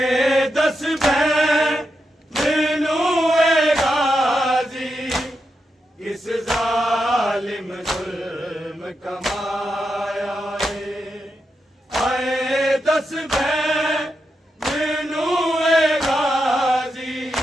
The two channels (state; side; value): normal; both; correlation 0.86